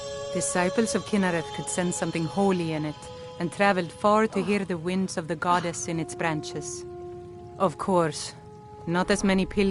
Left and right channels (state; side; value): identical; both; correlation 1.00